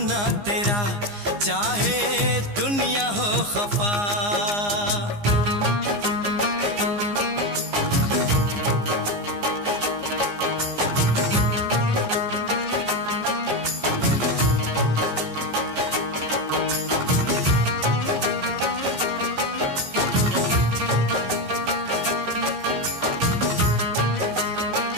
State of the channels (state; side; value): late; left; 15 ms